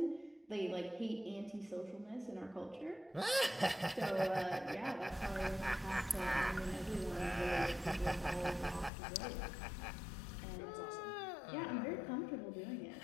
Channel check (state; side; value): drops out; right; at 8.9 s